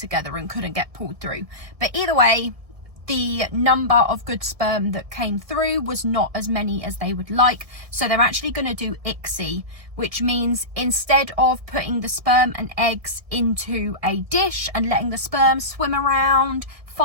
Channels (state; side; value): late; left; 1.6 ms